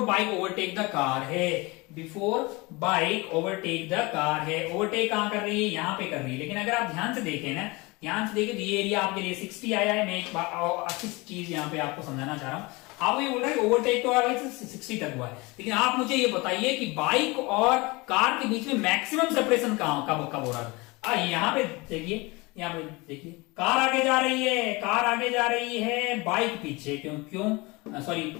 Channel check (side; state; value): right; quieter; 24.7 dB